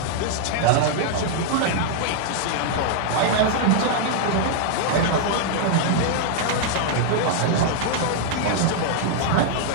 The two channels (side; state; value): both; different; correlation -0.01